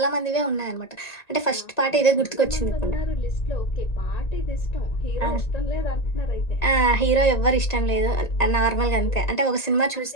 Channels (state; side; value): late; right; 1.9 ms